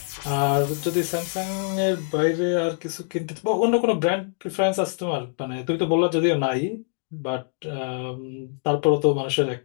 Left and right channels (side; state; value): right; silent; 62 dB below the other